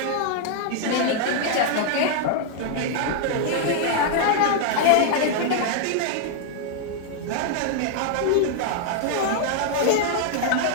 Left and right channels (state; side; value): different; both; correlation 0.00